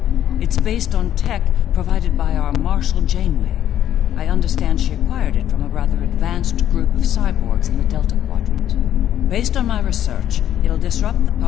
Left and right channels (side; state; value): right; quieter; 11.1 dB